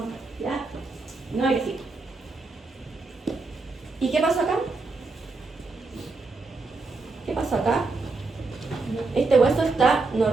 ¿ya? No agresiva. ¿Y qué pasó acá? ¿Qué pasó acá? Este hueso está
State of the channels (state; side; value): quieter; left; 3.7 dB